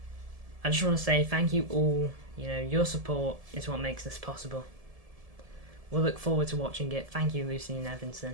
I just want to say thank you all. You know, your support is what makes this possible. We'll look forward to watching it. Thank you, Lucy and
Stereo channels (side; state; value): left; late; 1.7 ms